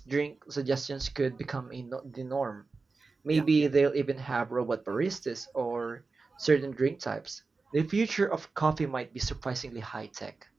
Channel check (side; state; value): left; quieter; 4.1 dB